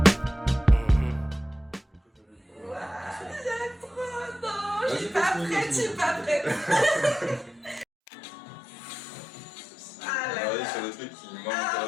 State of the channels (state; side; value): drops out; right; at 7.9 s